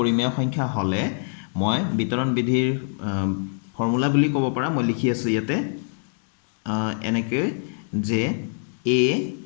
সংখ্যা হলে মই বিতৰণ বিধিৰ ফৰ্মুলা বুলি ক'ব পাৰা মই লিখি আছো ইয়াতে এনেকৈ যে a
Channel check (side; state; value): right; silent; 57 dB below the other